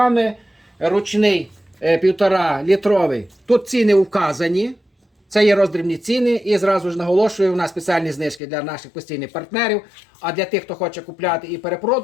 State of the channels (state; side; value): drops out; right; at 8.4 s